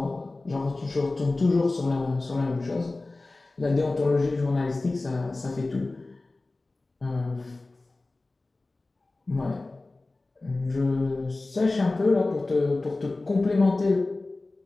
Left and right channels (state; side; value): quieter; right; 3.2 dB